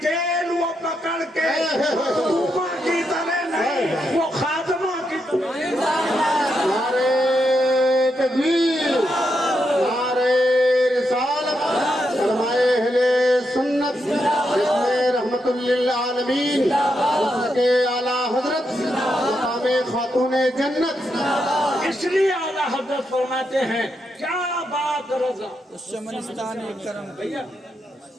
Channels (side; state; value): both; normal; correlation 0.83